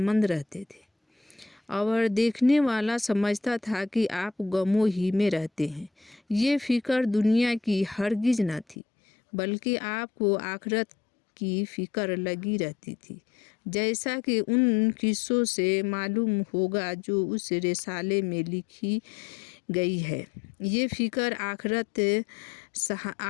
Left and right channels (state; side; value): drops out; right; at 8.8 s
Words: रहते थे और देखने वाला समझता था कि आप गमों ही में रहते हैं। ये फ़िक्र दुनिया की हरगिज़ न थी, बल्कि आपको आखिरत की फ़िक्र लगी रहती थी, जैसा कि उन किस्सों से मालूम होगा जो उस रिसाले में लिखी गई है। ये फ़िक्र आखिरत